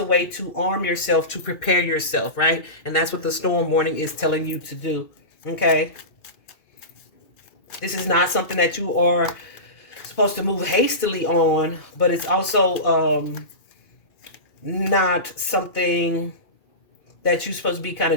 way to arm yourself, to prepare yourself, right? And that's what the storm warning is telling you to do, okay? This is not something that you are supposed to move hastily on, but it's also not something that you're supposed to be kind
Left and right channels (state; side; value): late; right; 2.3 ms